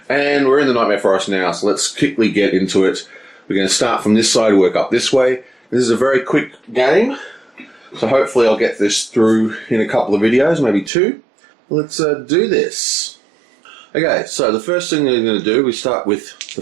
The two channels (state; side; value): drops out; left; at 10.9 s